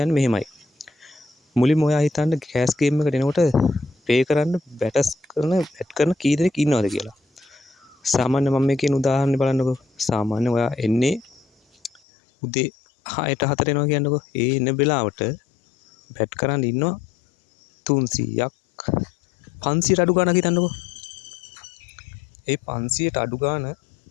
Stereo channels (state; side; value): drops out; right; at 12.0 s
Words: මෙහෙමයි. මුලින්ම ඔයා හිතන්න කෑෂ් ගේම් එකට එනකොට ප්ලේ කරන්න බැට් කරන කී දෙනෙක් ඉන්නවද කියලා. සාමාන්‍ය මම මේ කියන උදාහරණය බලන්නකෝ. සාමාන්‍ය ඔයා එන්නේ උදේ 6ට 4ට එනවා කියන්නකෝ. ඒ එන වෙලාවට බැට් කරන් ඉන්නවා 300ක් 500ට අඩු ගාණක් හිතන්නකෝ. ඒ 500ට අඩු ගාණ